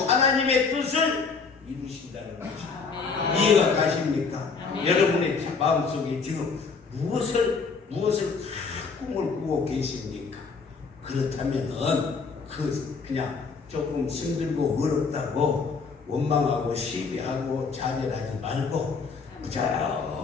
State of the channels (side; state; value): right; quieter; 4.9 dB